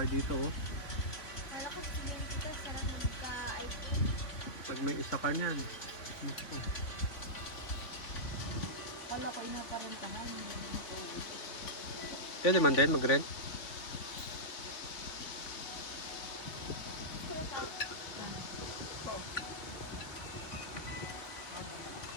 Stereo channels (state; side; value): late; right; 3.5 ms